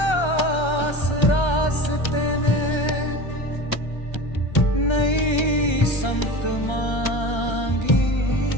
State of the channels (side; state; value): right; late; 1.3 ms